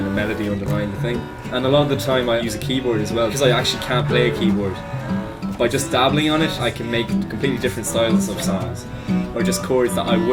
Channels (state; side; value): identical; both; correlation 1.00